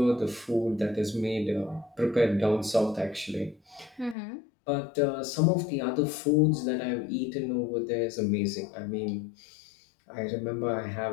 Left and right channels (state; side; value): drops out; right; at 4.2 s